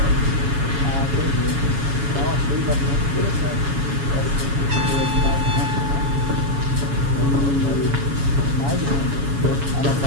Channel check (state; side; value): late; left; 7.1 ms